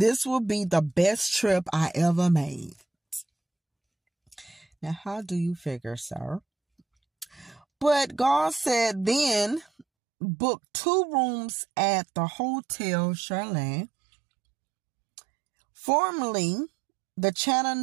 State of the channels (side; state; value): left; drops out; at 9.9 s